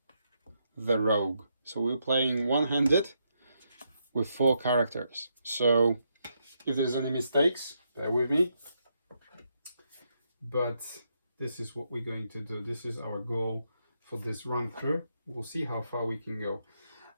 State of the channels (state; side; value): inverted; both; correlation -0.79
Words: the rogue. So we're playing one-handed with 4 characters. So if there's any mistakes, bear with me. But this is what we're going to do. This is our goal for this run through. We'll see how far we can go.